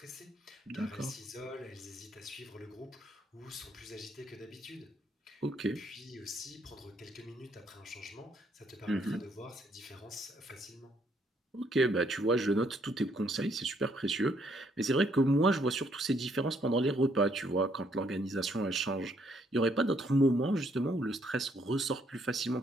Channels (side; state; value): both; normal; correlation 0.70